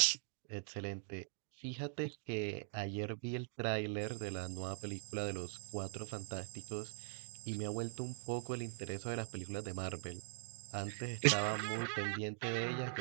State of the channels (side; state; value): left; silent; digital silence